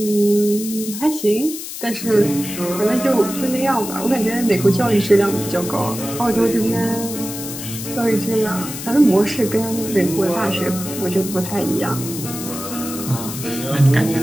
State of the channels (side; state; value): left; noise; hiss, 9 dB below the sound